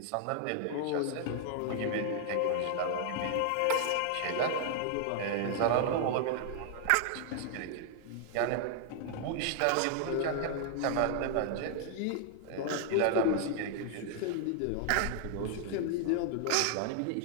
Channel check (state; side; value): different; both; correlation 0.00